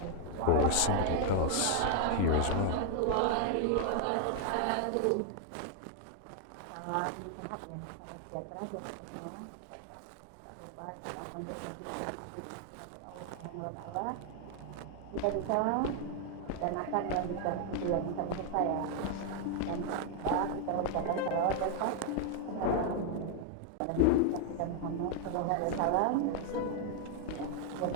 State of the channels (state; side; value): different; both; correlation 0.00